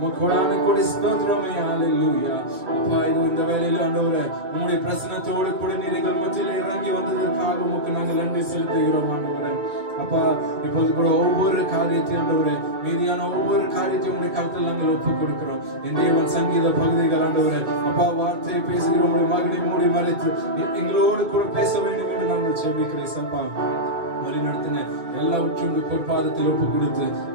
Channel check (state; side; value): late; left; 2.2 ms